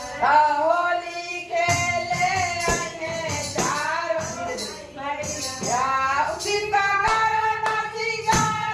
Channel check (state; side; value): identical; both; correlation 1.00